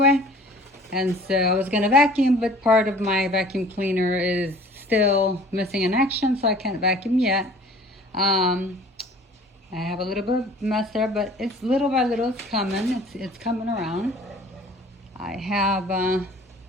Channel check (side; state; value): both; normal; correlation 0.49